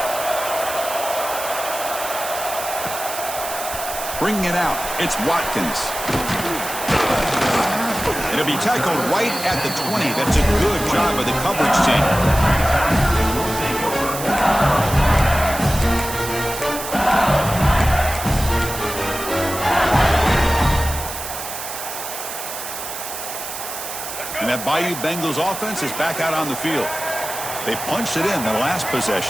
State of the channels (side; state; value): right; noise; hiss, 8 dB below the sound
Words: Bringing it out, it's Watkins. It'll be tackled right at the 20. That's a good job by the coverage team. And that Bayou Bengals offense is back out on the field. They punched it in the last